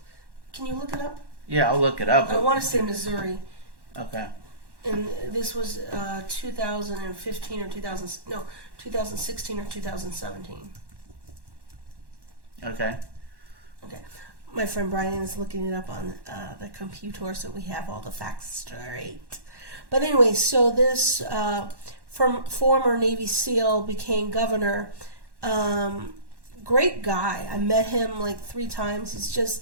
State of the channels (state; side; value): late; left; 1.1 ms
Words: Can you look it up? Yeah, I'll look it up. I want to say Missouri. Okay. And this was 2015 or 2016 or 2017. Okay. Okay. My friend Brian is looking it up on the computer, so we have all the facts straight. But anyway, so this from former Navy SEAL became governor. Great guy. I met him like 3 times. He's